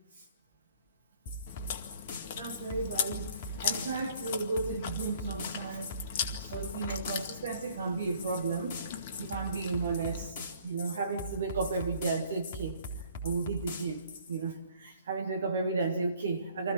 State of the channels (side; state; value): both; inverted; correlation -0.57